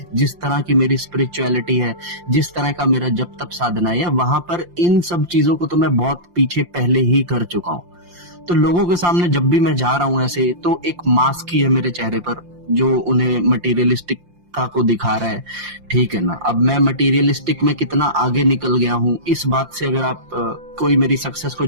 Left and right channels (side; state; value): left; late; 5.7 ms